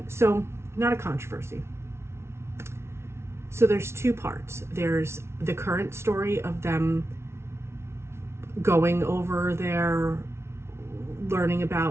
not a controversy. So there's 2 parts. There's the current story of them going over there, learning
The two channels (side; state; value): left; late; 0.13 ms